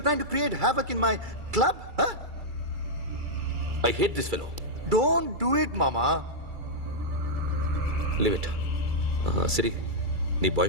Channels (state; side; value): late; left; 2.3 ms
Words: trying to create havoc in my club? Huh? I hate this fellow. Don't do it, mama. Leave it. Siri, నీ బాయ్